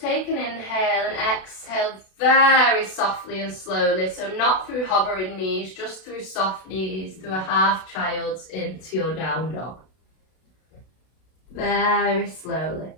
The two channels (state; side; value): late; right; 32 ms